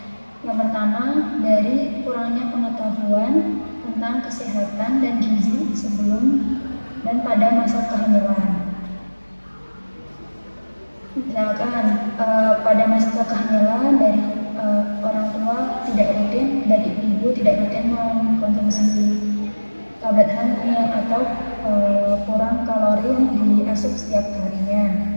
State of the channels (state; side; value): inverted; both; correlation -1.00